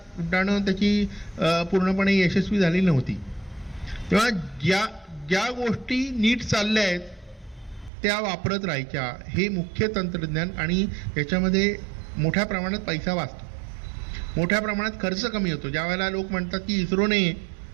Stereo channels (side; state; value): left; drops out; at 7.9 s